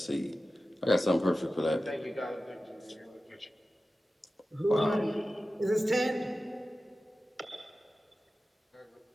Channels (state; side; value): normal; both; correlation 0.94